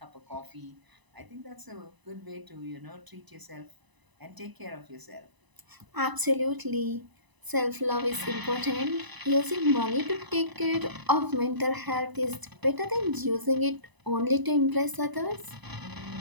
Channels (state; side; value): late; left; 1.0 ms